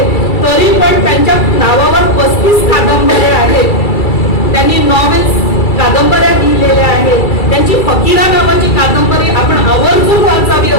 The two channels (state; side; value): late; right; 2.3 ms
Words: तरी पण त्यांच्या नावावर 35 कादंबऱ्या आहेत. त्यांनी नॉवेल्स, कादंबऱ्या लिहिलेल्या आहेत. त्यांची फकीरा नावाची कादंबरी आपण आवर्जून वाचावी